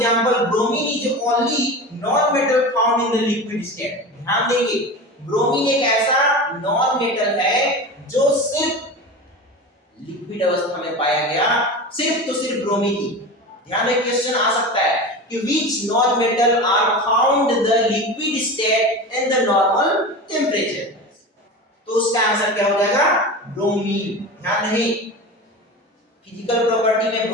bromine is only non metal found in the liquid state. ध्यान देंगे ब्रोमीन एक ऐसा नॉन मेटल है जो सिर्फ लिक्विड अवस्था में पाया गया, सिर्फ तो सिर्फ ब्रोमीन ही। ध्यान रखिए क्वेश्चन आ सकता है कि which non metal are found the liquid state in the normal temperature, तो उसका आंसर क्या हो जाएगा ब्रोमीन। ध्यान रहे फिजिकल प्रॉपर्टी में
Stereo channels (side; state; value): both; normal; correlation 0.29